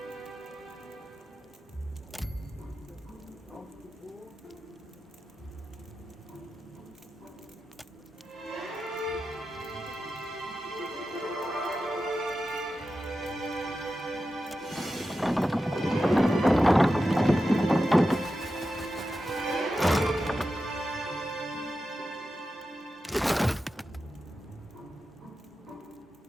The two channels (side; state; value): both; normal; correlation 0.91